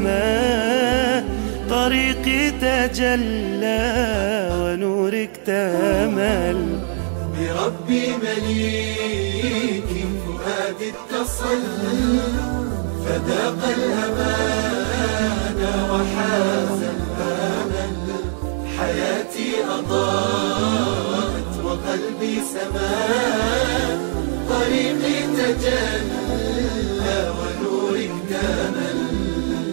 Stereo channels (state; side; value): silent; left; digital silence